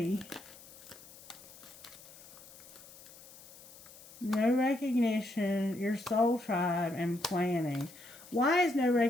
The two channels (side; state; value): left; noise; hiss, 19 dB below the sound